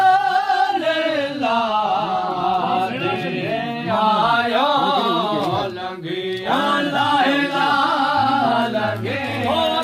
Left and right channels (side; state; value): both; identical; correlation 1.00